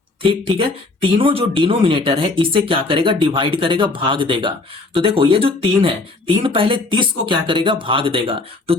ठीक है, तीनों जो डिनोमिनेटर है इसे क्या करेगा? डिवाइड करेगा, भाग देगा। तो देखो, ये जो 3 है, 3 पहले 30 को क्या करेगा? भाग देगा। तो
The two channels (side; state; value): right; quieter; 3.3 dB